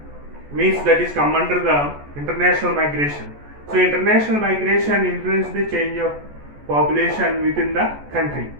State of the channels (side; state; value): left; late; 14 ms